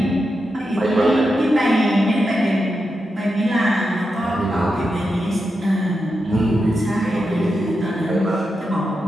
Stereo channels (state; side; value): normal; both; correlation 0.88